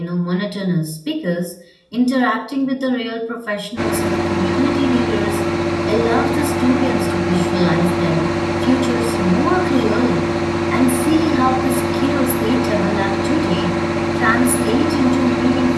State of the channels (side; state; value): both; identical; correlation 1.00